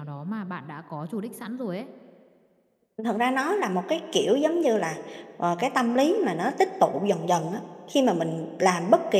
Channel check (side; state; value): both; identical; correlation 1.00